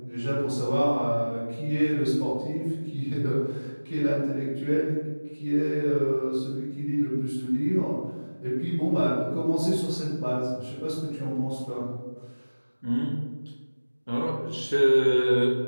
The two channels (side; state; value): both; inverted; correlation -1.00